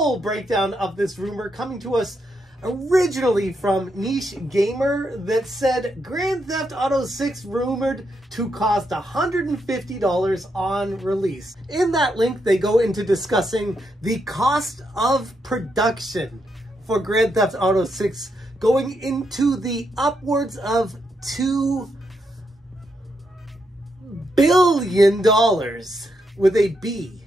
breakdown of this rumor coming to us originally from Niche Gamer that said Grand Theft Auto 6 rumored to cost $150 on release. In that link, they go into discussing the cost of production for Grand Theft Auto 6 going into the upwards of $2 billion with a B.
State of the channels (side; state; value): both; normal; correlation 0.80